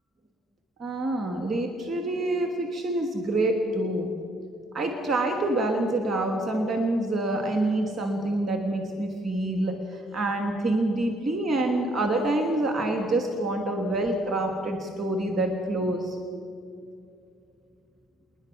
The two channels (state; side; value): normal; both; correlation 0.66